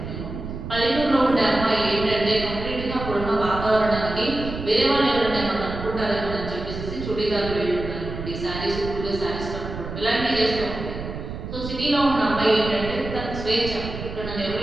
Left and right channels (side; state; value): right; noise; rumble, 8 dB below the sound